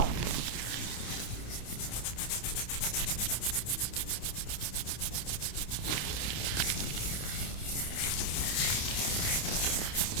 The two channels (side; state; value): right; late; 28 ms